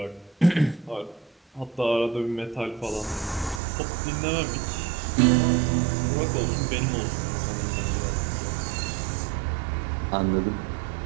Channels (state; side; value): drops out; left; at 3.6 s